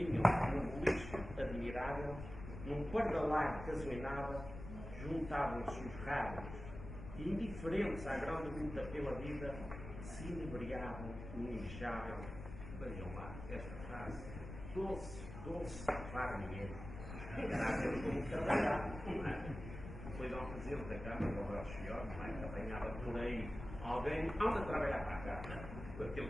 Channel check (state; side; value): noise; left; rumble, 10 dB below the sound